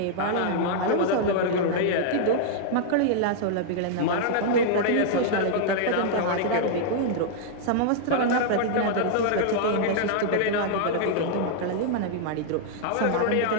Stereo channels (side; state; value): both; different; correlation -0.01